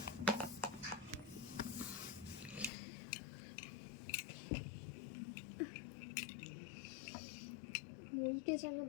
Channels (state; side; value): drops out; right; at 2.7 s